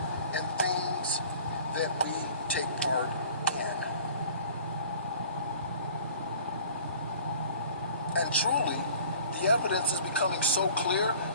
and things that we take part in. And truly, the evidence is becoming so clear.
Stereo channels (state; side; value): inverted; both; correlation -0.47